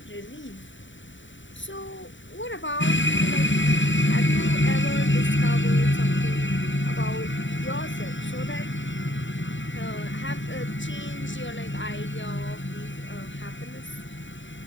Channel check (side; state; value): right; late; 0.55 ms